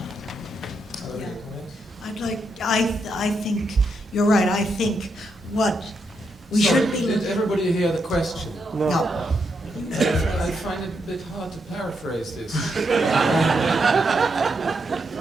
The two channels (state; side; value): normal; both; correlation 0.81